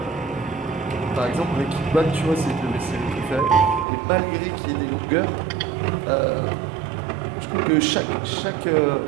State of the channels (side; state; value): left; drops out; at 3.9 s